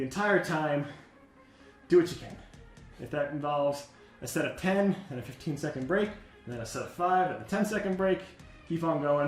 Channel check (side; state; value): both; identical; correlation 1.00